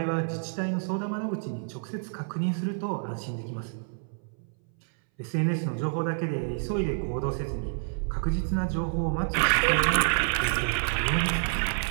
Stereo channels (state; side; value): silent; left; 59 dB below the other